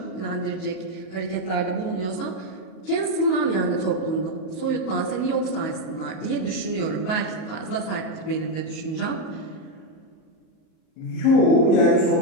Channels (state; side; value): late; right; 38 ms